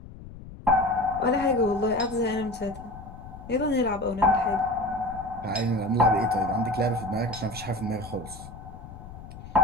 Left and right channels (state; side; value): noise; left; rumble, 15 dB below the sound